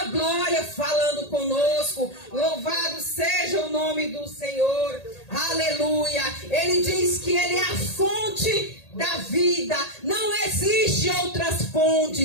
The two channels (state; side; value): late; right; 1.8 ms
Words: glória falando conosco. Louvado seja o nome do Senhor. Aleluia. Ele diz que Ele é a fonte da vida. Não existe outras